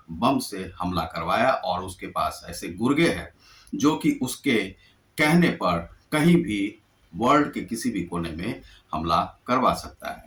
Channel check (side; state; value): both; identical; correlation 1.00